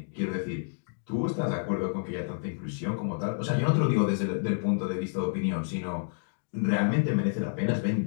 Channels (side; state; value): right; silent; digital silence